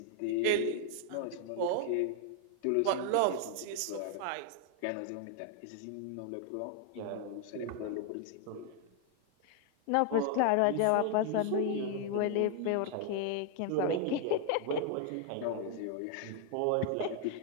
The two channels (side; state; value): both; different; correlation 0.00